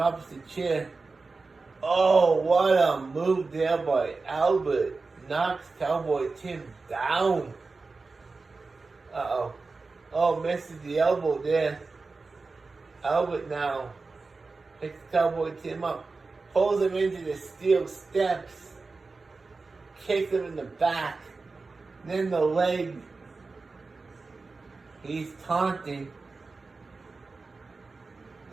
the chair. What a move there by Albert. Knocks Cowboy Tim down. Misses the elbow there. Albert now picks Cowboy Tim up. Pulls him into the steel steps. Kicks him in the back. Then the leg. He's taunting.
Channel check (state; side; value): quieter; left; 4.0 dB